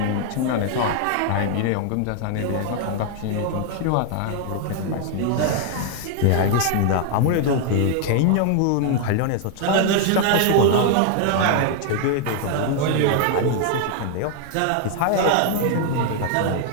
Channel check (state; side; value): different; both; correlation 0.00